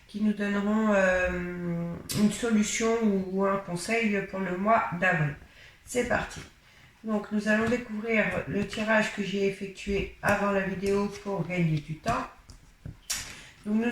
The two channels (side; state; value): both; identical; correlation 1.00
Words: qui nous donneront une solution ou un conseil pour le mois d'avril. C'est parti. Donc nous allons découvrir le tirage que j'ai effectué avant la vidéo pour gagner du temps. Donc